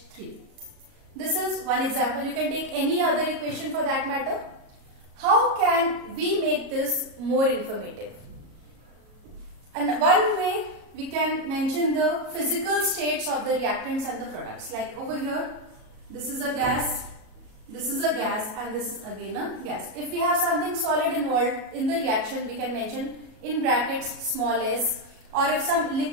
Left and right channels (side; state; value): left; late; 37 ms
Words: This is one example. You can take any other equation for that matter. How can we make this more informative? And one way we can mention the physical states of the reactants and the products. Like over here, this is a gas, this is a gas, and this is again a gas. If we have something solid involved in the reaction, we can mention in brackets small s, or if some